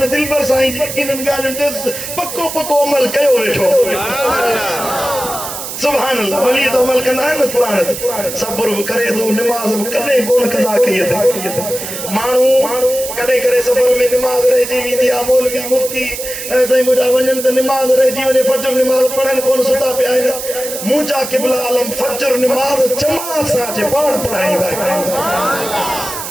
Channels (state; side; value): noise; right; hiss, 8 dB below the sound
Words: दिल पर साईं जी इन्हनि ॻाल्हियुनि ते पको अमल कयो वेठो सुभान अल्लाह वली तो अमल कंदा आहिनि न क़ुरान ते सब्र बि करे थो निमाज़ बि कॾहिं कोन कज़ा कई अथई माण्हू कॾहिं करे सफ़र में निमाज़ रहिजी वेंदी आहे मौलवी मुफ्ती साईं मुंहिंजा वञनि त निमाज़ रहिजी वञे फजर निमाज़ पढ़नि कोन सुता पिया आहिनि मुंहिंजा क़िबला आलम फजर निमाज़ जमात सां अचे पाण पढ़ाईंदा आहिनि